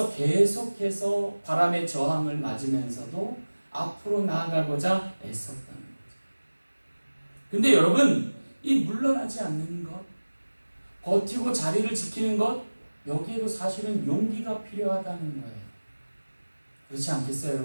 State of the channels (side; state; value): both; inverted; correlation -1.00